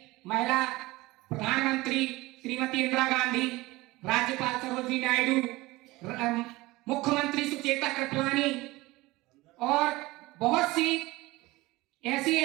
महिला प्रधानमंत्री श्रीमती इंदिरा गांधी, राज्यपाल सरोजिनी नायडू, मुख्यमंत्री सुचेता कृपलानी और बहुत सी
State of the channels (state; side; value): quieter; left; 20.3 dB